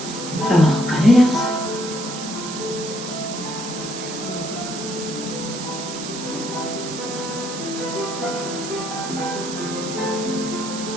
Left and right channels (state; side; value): noise; right; hiss, 8 dB below the sound